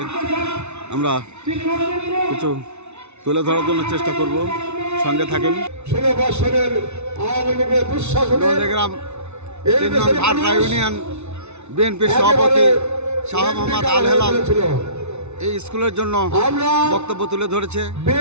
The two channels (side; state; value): left; late; 0.81 ms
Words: আমরা কিছু তুলে ধরার জন্য চেষ্টা করব, সঙ্গে থাকেন। গ্রাম 3 নং ভাটরা ইউনিয়ন বিএনপির সভাপতি শাহ মোহাম্মদ আল হেলাল এই স্কুলের জন্য বক্তব্য তুলে ধরেছে।